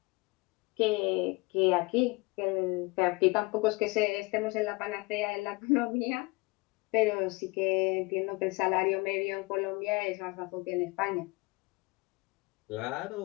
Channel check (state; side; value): quieter; right; 25.0 dB